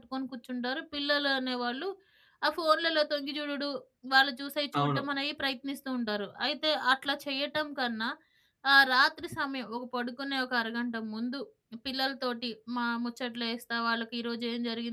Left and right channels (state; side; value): identical; both; correlation 1.00